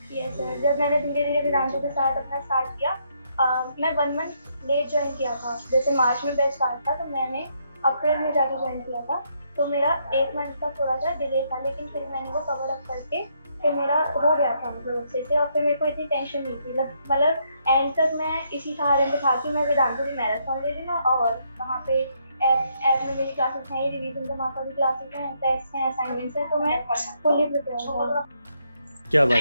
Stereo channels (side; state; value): both; inverted; correlation -0.74